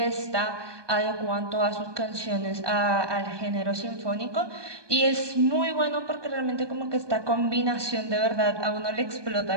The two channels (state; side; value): late; left; 1.2 ms